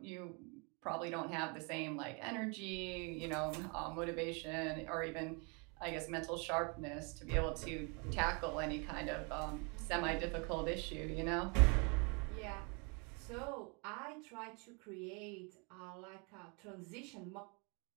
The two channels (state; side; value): quieter; left; 33.2 dB